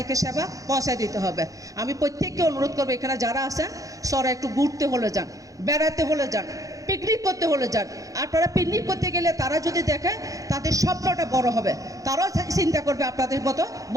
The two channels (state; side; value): late; left; 0.17 ms